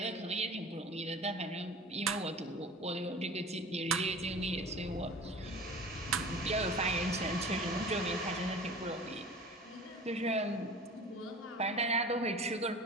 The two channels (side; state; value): both; normal; correlation 0.40